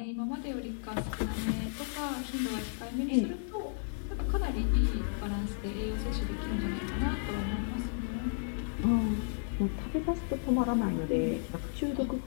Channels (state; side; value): silent; right; 56 dB below the other